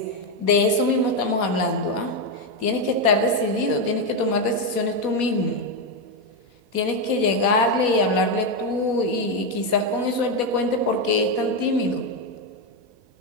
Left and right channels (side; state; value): left; late; 4.1 ms